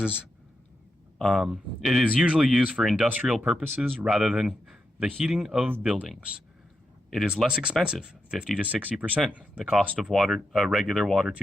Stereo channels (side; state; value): both; normal; correlation 0.86